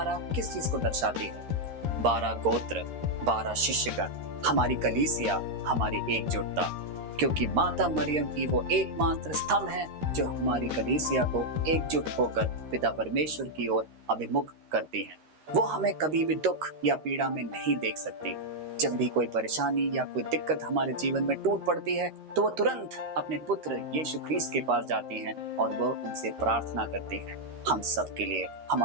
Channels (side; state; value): left; late; 13 ms